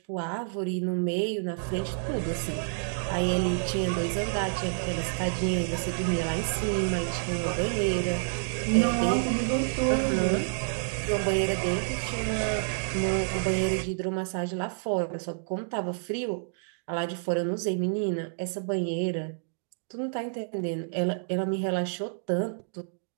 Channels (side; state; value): left; silent; digital silence